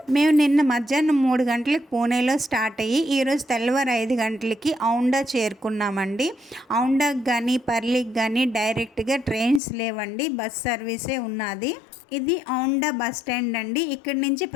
మేము నిన్న మధ్యాహ్నం 3 గంటలకు పూణేలో స్టార్ట్ అయ్యి ఈరోజు తెల్లవారు 5 గంటలకి ఔండా చేరుకున్నామండి. ఔండాకి కానీ పర్లికి కానీ డైరెక్ట్గా ట్రైన్స్ లేవండి, బస్ సర్వీసే ఉన్నది. ఇది ఔండా బస్ స్టాండ్ అండి. ఇక్కడి నుంచి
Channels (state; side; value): drops out; right; at 9.6 s